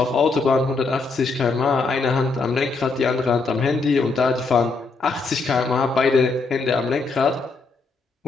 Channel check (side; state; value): right; quieter; 4.0 dB